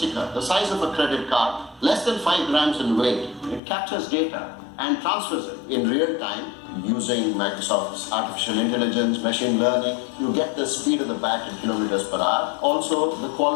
the size of a credit card, less than 5 grams in weight. It captures data and transfers it in real time using Microsoft's artificial intelligence, machine learning. You get the speed of the bat in kilometers per hour. Also the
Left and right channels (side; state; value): right; drops out; at 3.6 s